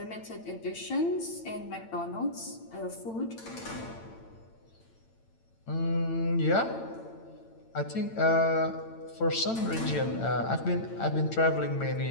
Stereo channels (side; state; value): right; late; 8.9 ms